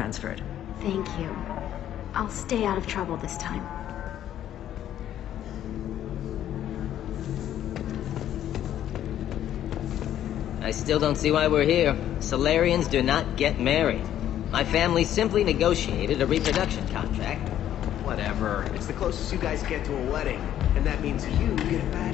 Thank you. I'll stay out of trouble this time. I still don't see why we're here. Solarians do not get married. My family simply negotiated a reproduction contract. Whatever. It's the closest you guys get to a wedding. And that means you get a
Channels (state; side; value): quieter; right; 11.3 dB